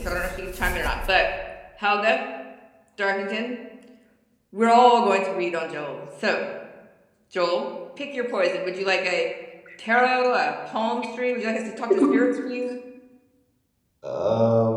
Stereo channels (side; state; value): both; identical; correlation 1.00